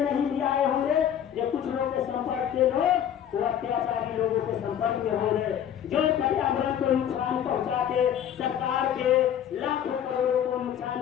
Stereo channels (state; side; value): quieter; right; 9.7 dB